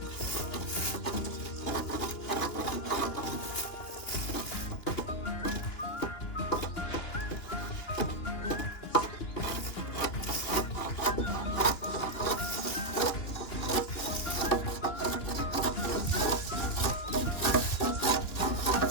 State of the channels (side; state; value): right; late; 2.9 ms